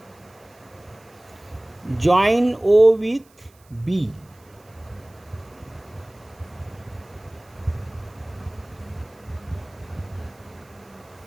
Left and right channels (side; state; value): right; noise; hiss, 30 dB below the sound